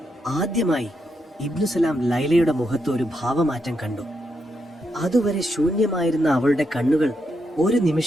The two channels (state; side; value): normal; both; correlation 0.82